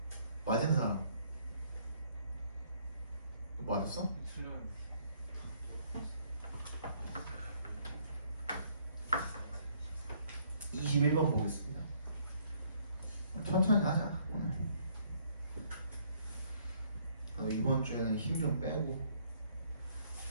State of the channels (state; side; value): inverted; both; correlation -0.65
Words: 맞은 사람 너 맞았어? 21번 보겠습니다. 천천히 하자 오늘. 이번 주에는 힘 좀 빼고